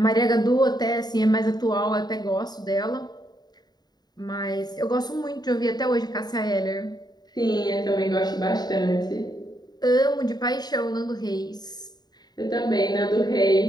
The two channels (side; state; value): right; late; 0.20 ms